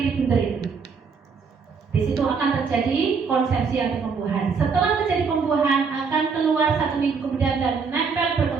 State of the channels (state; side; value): quieter; left; 5.4 dB